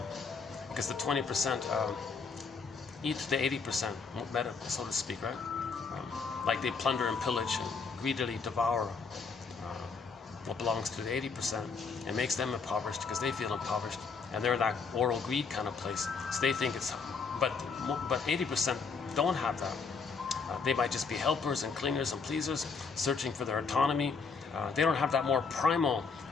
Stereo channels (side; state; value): right; quieter; 5.1 dB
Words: Because the 20% eat the 80%, better, so to speak, right? Like they plunder and pillage and greedily devour what belongs to the 80% and makes them impoverished because they feel impoverished, and they're that oral greed kind of place. So they think it's, but 80% don't have that. They might just be helpers and cleaners and pleasers, searching for their autonomy. They don't have that more primal,